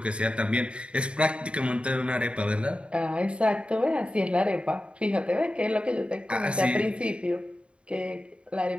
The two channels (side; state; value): left; late; 0.057 ms